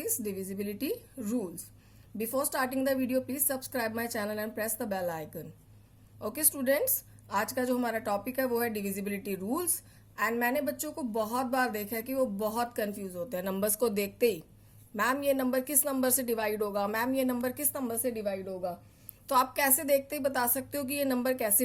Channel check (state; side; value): identical; both; correlation 1.00